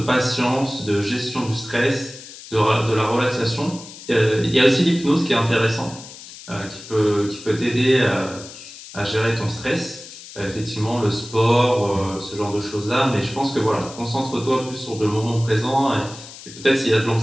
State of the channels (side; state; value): left; noise; hiss, 16 dB below the sound